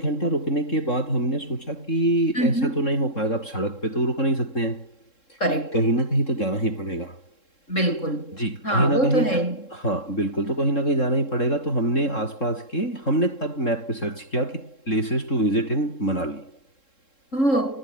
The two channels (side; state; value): right; late; 3.7 ms